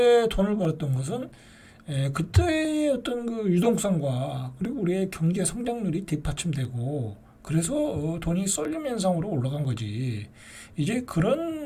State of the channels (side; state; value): both; identical; correlation 1.00